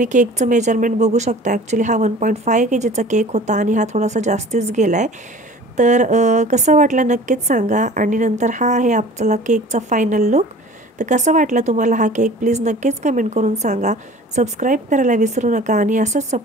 केकचं मेजरमेंट बघू शकता. ॲक्च्युली हा 1.5 kgचा केक होता आणि हा थोडासा जास्तीच गेला आहे. तर कसं वाटलं नक्कीच सांगा. आणि नंतर हा आहे आपला केकचा फायनल लुक. तर कसं वाटलं तुम्हाला हा केक प्लीज नक्कीच कमेंट करून सांगा. सबस्क्राईब करायला विसरू नका आणि असंच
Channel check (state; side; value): normal; both; correlation 0.44